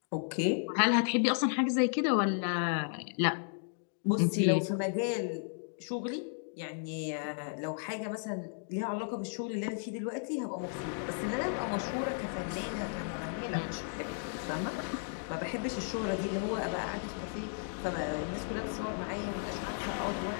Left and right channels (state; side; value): silent; right; digital silence